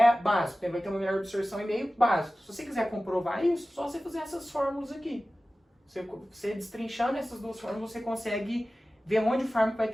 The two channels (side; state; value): both; normal; correlation 0.96